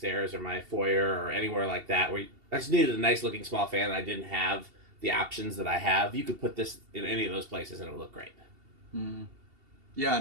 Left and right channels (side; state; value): left; late; 2.7 ms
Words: or my foyer or anywhere like that, where I just needed a nice looking small fan and I didn't have the options that I have, you could put this in any of those places and it would look great. Mm. Yeah,